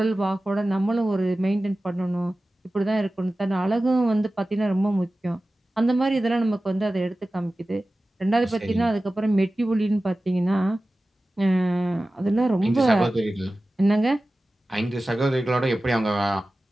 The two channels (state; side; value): normal; both; correlation 0.96